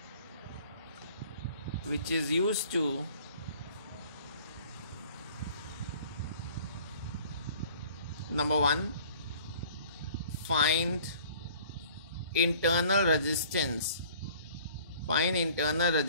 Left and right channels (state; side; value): inverted; both; correlation -0.52